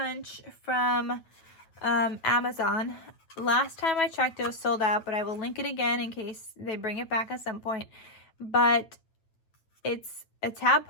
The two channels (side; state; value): right; late; 9.1 ms